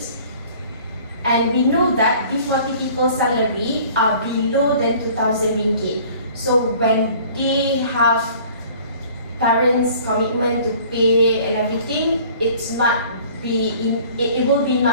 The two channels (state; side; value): inverted; both; correlation -0.51